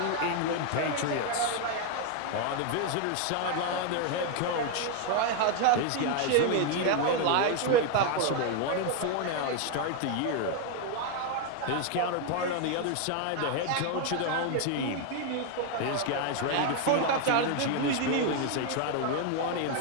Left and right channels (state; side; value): different; both; correlation 0.01